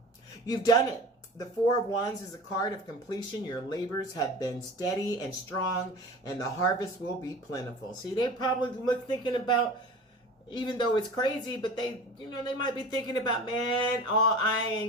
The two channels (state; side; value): normal; both; correlation 0.37